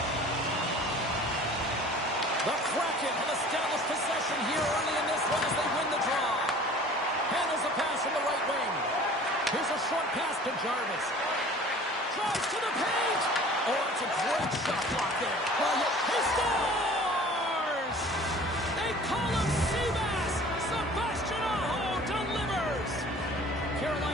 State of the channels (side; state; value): both; normal; correlation 0.46